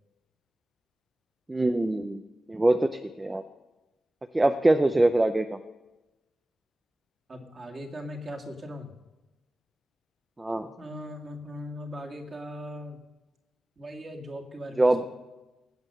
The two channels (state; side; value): normal; both; correlation 0.97